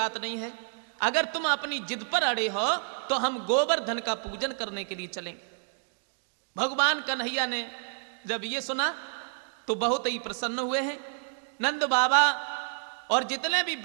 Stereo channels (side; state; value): left; silent; digital silence